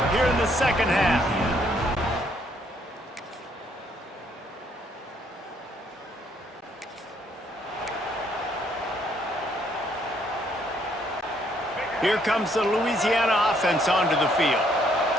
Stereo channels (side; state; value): both; normal; correlation 0.69